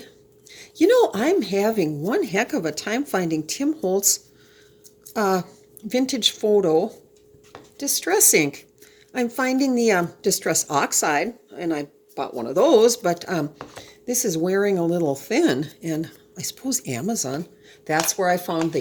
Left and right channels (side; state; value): both; identical; correlation 1.00